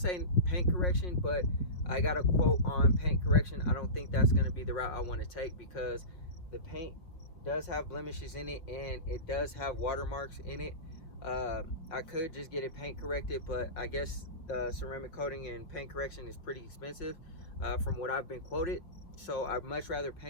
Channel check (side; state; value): right; late; 5.6 ms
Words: paint correction, but I got a quote on paint correction. I don't think that's going to be the route I want to take, because the paint does have blemishes in it and it does have watermarks in it. I could just get it paint corrected, but I guess ceramic coating and paint correction is pretty expensive from what I've been quoted. So I'd much rather